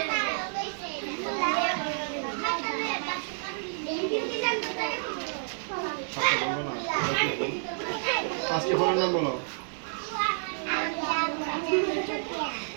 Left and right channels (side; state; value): left; silent; digital silence